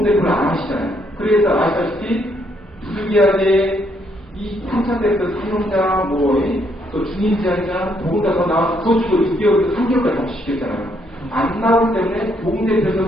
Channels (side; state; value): both; normal; correlation 0.72